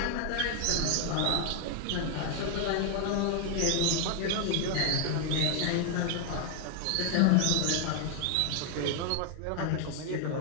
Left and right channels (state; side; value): different; both; correlation 0.00